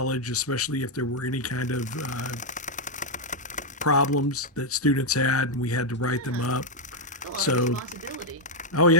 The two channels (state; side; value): normal; both; correlation 0.01